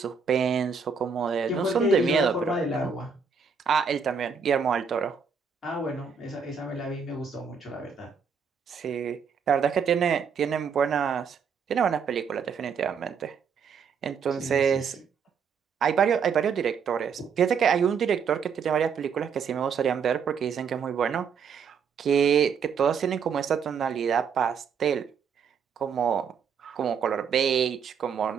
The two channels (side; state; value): left; quieter; 6.2 dB